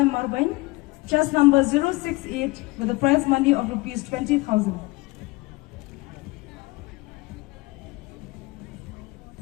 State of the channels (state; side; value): quieter; right; 22.9 dB